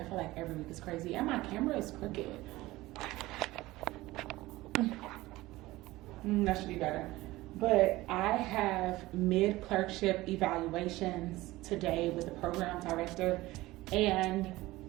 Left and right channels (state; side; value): quieter; left; 18.5 dB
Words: feel like every week is crazy, and my camera is crooked. That should be better. But I have mid-clerkship evaluations today with the program director, and